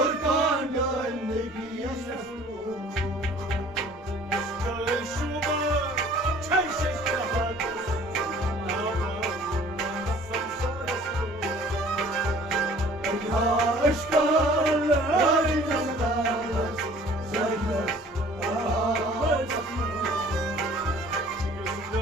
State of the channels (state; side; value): normal; both; correlation 0.51